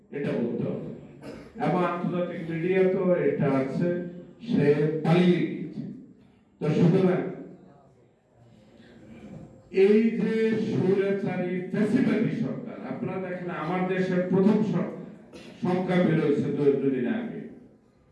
এটা বলতে হবে। এবং আন্তর্জাতিক মিডিয়া তো এটা আছে, সে পালিয়ে গেছে। তো সুতরাং এই যে স্বৈরাচারী ফ্যাসিবাদী সরকার, আপনারা দেখেন আমার দেশের প্রথম সংখ্যা বেরোয়েছে 2 দিন আগে,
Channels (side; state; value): both; identical; correlation 1.00